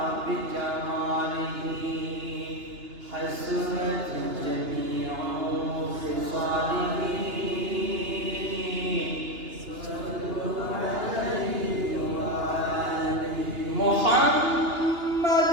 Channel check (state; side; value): late; left; 2.8 ms